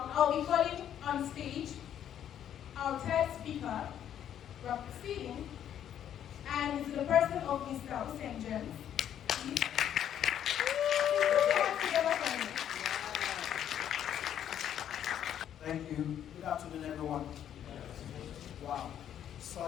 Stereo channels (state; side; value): quieter; right; 10.0 dB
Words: I'll be calling on stage our third speaker, Rob Proceeding, and it's the person of Mr. Usen James. Please. Thank you. Good afternoon, everyone. Wow,